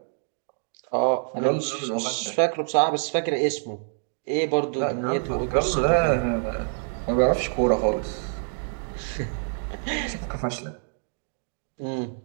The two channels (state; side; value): silent; left; digital silence